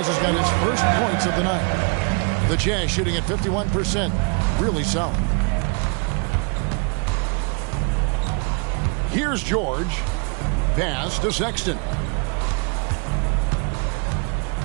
has got his first points of the night. The Jazz shooting at 51%. Really solid. Here's George. Pass to Sexton.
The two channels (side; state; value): left; quieter; 35.3 dB